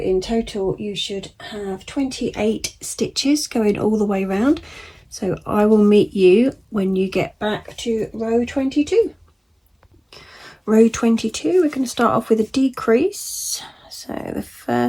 total you should have 28 stitches going all the way around. So I will meet you when you get back to row 22. Row 22, we're going to start off with a decrease. So the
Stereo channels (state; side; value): identical; both; correlation 1.00